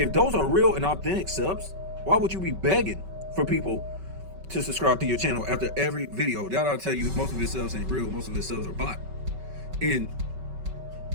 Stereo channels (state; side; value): late; left; 5.3 ms